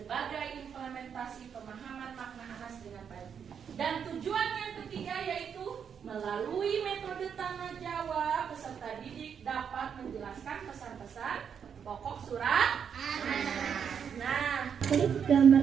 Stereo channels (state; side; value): quieter; left; 7.4 dB